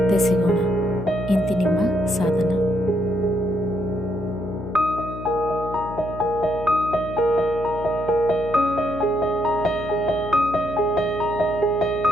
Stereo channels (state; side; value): noise; left; hum, 10 dB below the sound